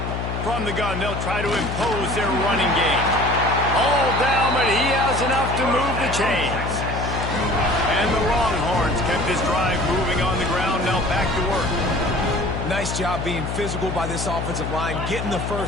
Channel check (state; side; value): noise; left; hum, 4 dB below the sound